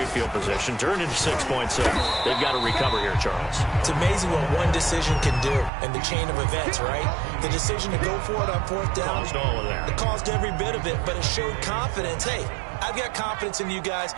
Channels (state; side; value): drops out; left; at 5.7 s